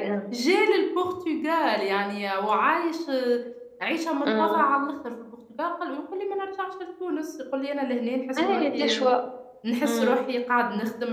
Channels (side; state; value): both; identical; correlation 1.00